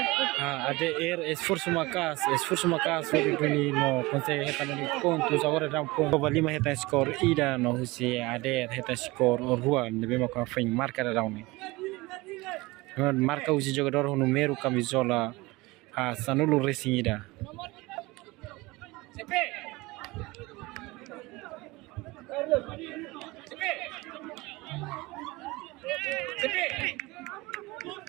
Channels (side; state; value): left; quieter; 22.1 dB